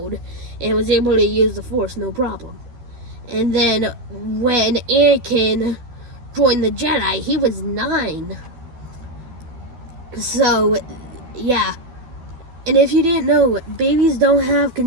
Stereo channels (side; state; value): left; late; 12 ms